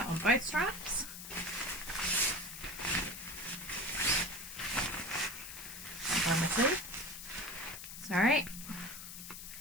on both straps. On my sleeve. Sorry.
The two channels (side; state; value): left; noise; hiss, 10 dB below the sound